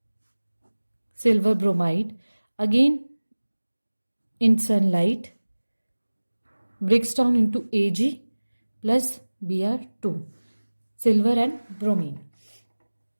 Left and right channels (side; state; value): both; inverted; correlation -1.00